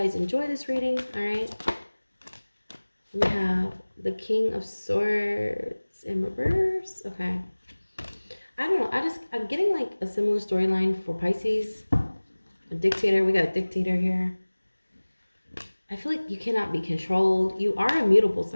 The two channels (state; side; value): inverted; both; correlation -1.00